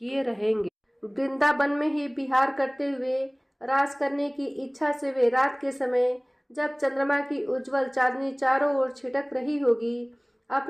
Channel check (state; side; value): identical; both; correlation 1.00